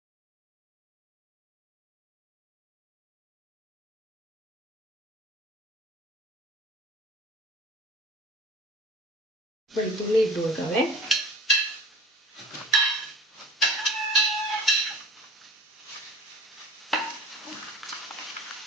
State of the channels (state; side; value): normal; both; correlation 0.41